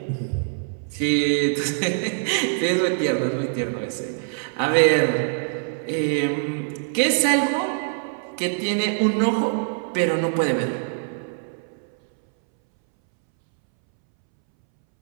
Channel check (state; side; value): silent; left; 63 dB below the other